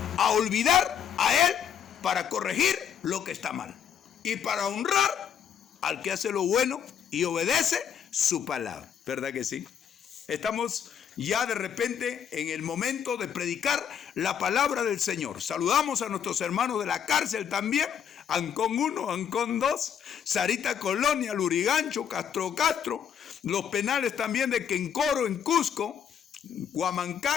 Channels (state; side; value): quieter; right; 8.3 dB